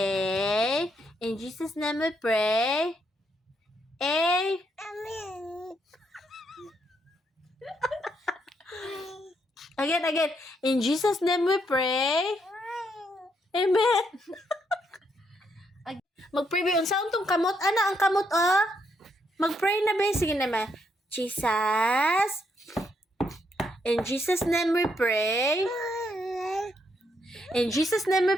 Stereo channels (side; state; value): both; normal; correlation 0.76